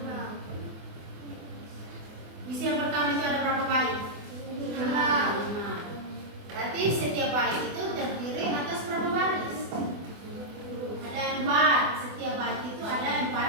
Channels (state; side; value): late; left; 24 ms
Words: Puisi yang pertama itu ada berapa bait? 5. Berarti setiap bait itu terdiri atas berapa baris? Ada 4. Setiap bait itu ada